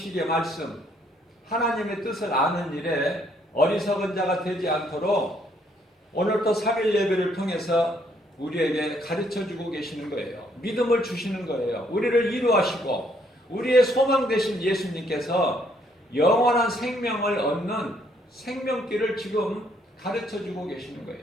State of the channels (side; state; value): both; normal; correlation 0.69